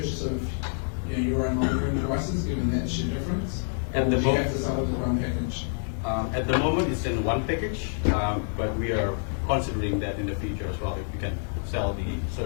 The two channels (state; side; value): silent; right; digital silence